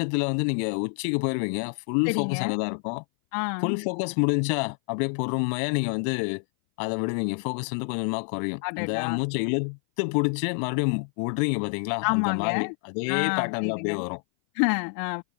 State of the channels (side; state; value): right; silent; 57 dB below the other